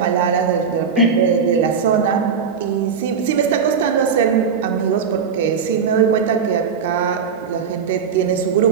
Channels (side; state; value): left; quieter; 6.3 dB